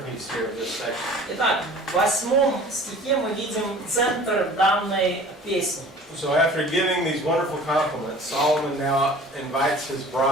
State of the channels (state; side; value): normal; both; correlation 0.45